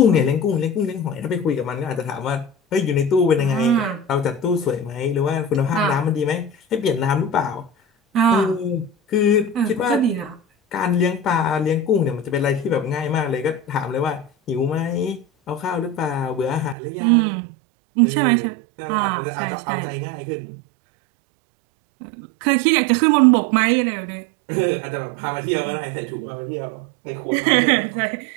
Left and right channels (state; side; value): drops out; left; at 16.8 s